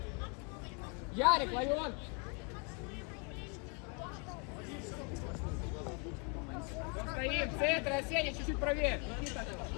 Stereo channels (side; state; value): right; quieter; 35.5 dB